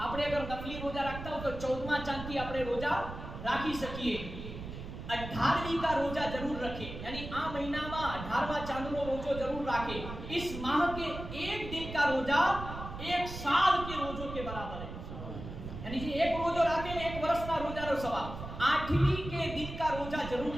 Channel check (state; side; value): noise; right; rumble, 9 dB below the sound